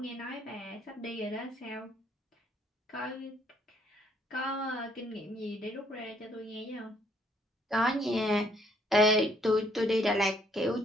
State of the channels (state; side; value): normal; both; correlation 0.67